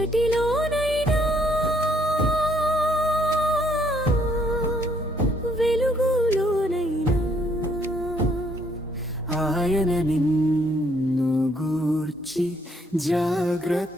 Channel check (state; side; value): normal; both; correlation 0.68